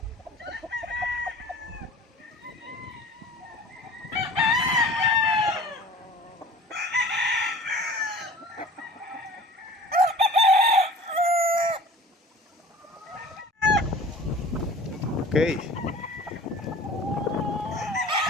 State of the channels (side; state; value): both; normal; correlation 0.43